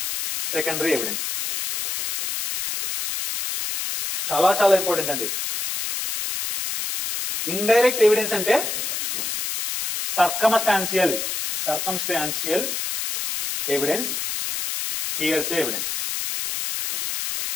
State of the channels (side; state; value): left; noise; hiss, 3 dB below the sound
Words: secondary evidence. చాలా చాలా important అండి. Indirect evidence అంటే సర్కమ్స్టాన్షియల్ ఎవిడెన్స్, హియర్సే ఎవిడెన్స్.